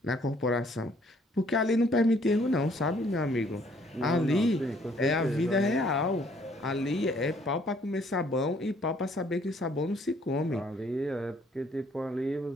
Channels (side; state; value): both; normal; correlation 0.63